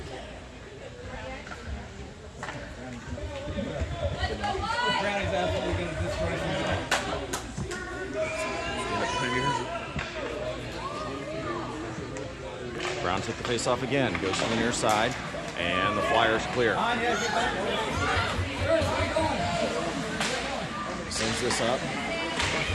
Brownie's absolutely going to destroy him. Brown took the face off again, goes to the near side, and the Flyers clear. Sends this up.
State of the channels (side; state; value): both; identical; correlation 1.00